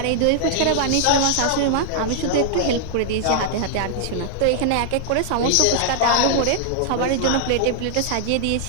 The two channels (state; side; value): different; both; correlation -0.01